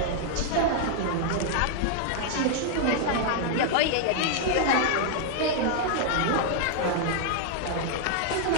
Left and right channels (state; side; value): different; both; correlation 0.00